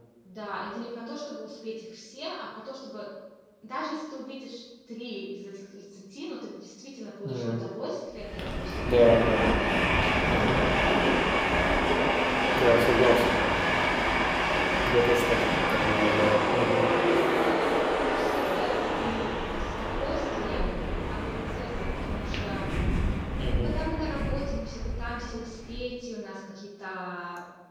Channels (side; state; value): both; identical; correlation 1.00